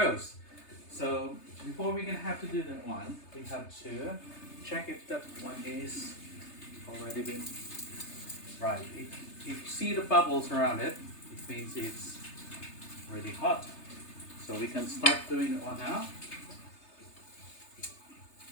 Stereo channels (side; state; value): right; late; 3.3 ms